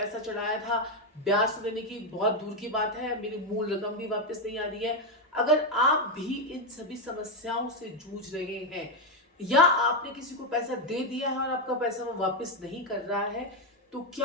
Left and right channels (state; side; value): normal; both; correlation 0.06